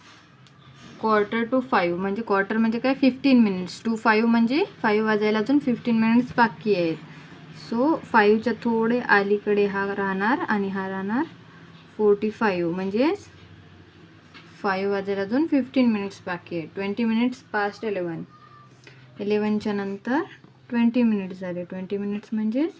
क्वार्टर टू 5 म्हणजे क्वार्टर म्हणजे काय 15 मिनिट्स. 2 5 म्हणजे 5 वाजायला अजून 15 मिनिट्स बाकी आहेत. सो 5च्या थोडे अलीकडे हा राहणार आणि हा राहणार 45. म्हणजेच 5 वाजेल, अजून 15 मिनिट्स बाकी आहे. 20 मिनिट्स पास्ट 11. 11च्या नंतर 20 मिनिट्स झाले. 20 मिनिट्स म्हणजेच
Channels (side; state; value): both; identical; correlation 1.00